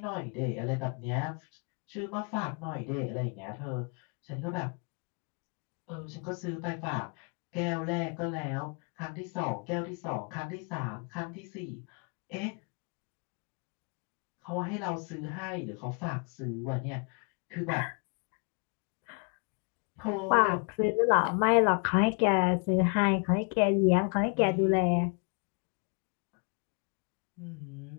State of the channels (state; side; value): quieter; right; 38.4 dB